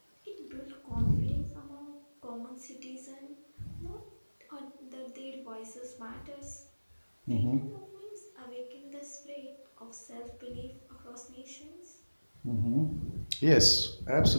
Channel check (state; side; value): inverted; both; correlation -1.00